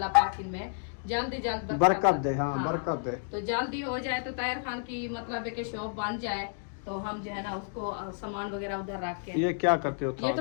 पाक इनमें जल्दी जल्द बरकत दे। हाँ बरकत दे। तो जल्दी हो जाए, तो ताहिर खान की मतलब है कि शॉप बन जाए, तो हम जो है ना उसको सामान वगैरह उधर रख के। ये क्या करते हो? ये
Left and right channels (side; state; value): right; silent; digital silence